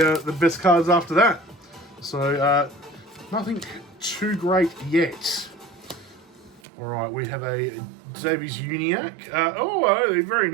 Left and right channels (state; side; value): drops out; left; at 6.6 s